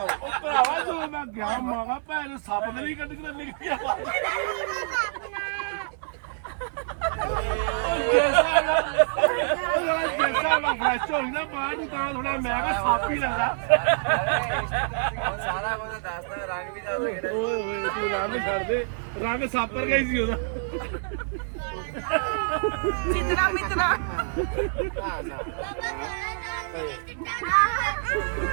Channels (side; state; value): left; silent; digital silence